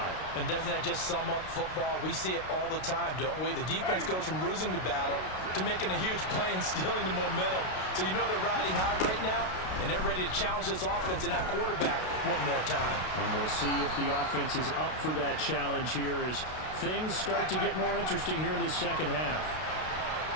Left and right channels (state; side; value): late; right; 32 ms